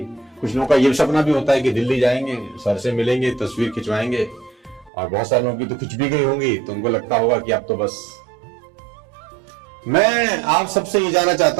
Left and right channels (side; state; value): left; drops out; at 4.9 s